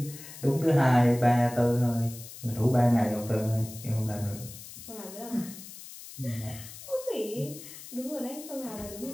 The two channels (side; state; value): left; noise; hiss, 15 dB below the sound